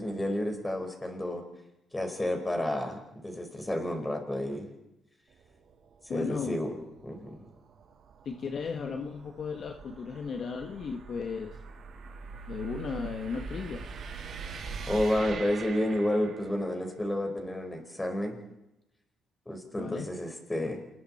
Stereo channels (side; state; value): both; normal; correlation 0.89